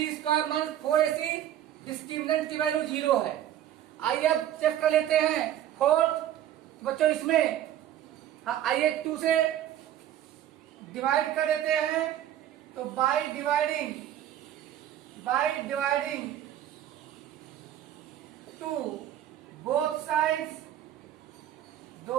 square minus 4ac discriminant की वैल्यू 0 है। आइए अब चेक कर लेते हैं 4। बच्चों इसमें आइए 2 से डिवाइड कर देते हैं, तो बाय डिवाइडिंग 2 बोथ साइड्स,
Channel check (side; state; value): left; quieter; 11.4 dB